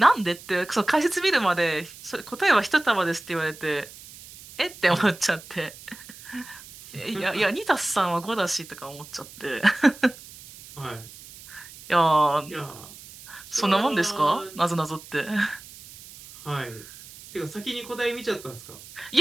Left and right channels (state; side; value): noise; right; hiss, 18 dB below the sound